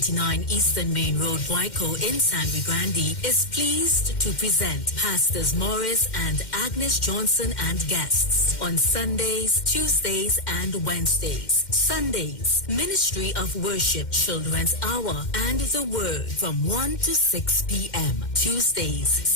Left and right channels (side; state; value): right; late; 2.1 ms